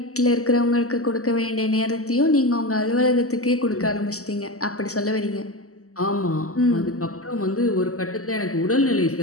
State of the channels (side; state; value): right; late; 0.65 ms